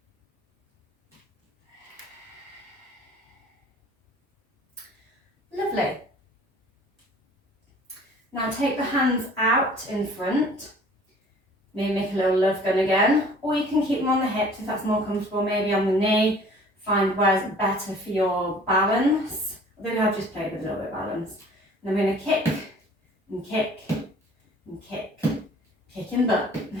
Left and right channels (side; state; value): both; normal; correlation 0.50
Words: Lovely. Now take the hands out in front. Maybe make a little love gun again, or you can keep them on the hips if that's more comfortable, maybe on the knee. Find where's better for your balance. I think I've just played with a little bit of balance. And I'm going to kick and kick and kick, kicking butt.